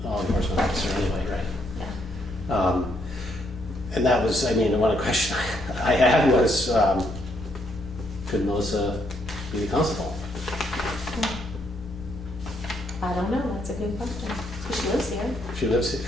law enforcement officer anyway, right? yeah. And that was, I mean, one question I had was, could Melissa be the constable? I don't know, that's a good question. She lives here. She lives here.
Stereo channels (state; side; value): normal; both; correlation 0.73